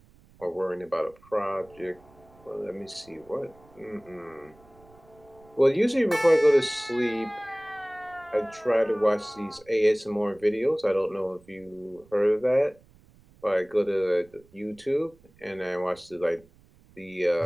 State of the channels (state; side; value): noise; right; rumble, 27 dB below the sound